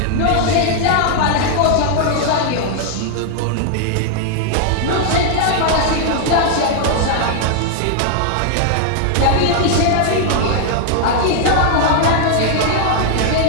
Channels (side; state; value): both; different; correlation -0.01